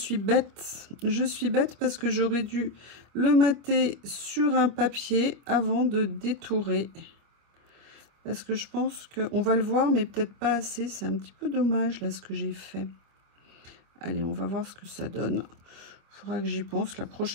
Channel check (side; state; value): left; late; 25 ms